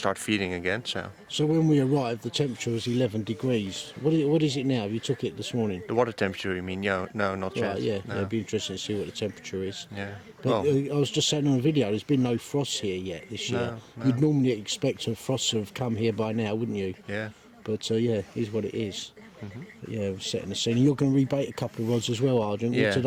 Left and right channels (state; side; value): identical; both; correlation 1.00